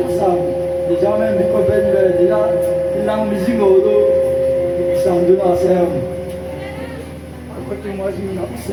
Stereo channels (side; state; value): both; identical; correlation 1.00